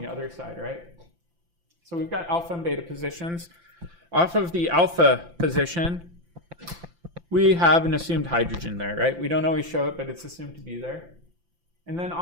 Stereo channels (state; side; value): late; left; 5.8 ms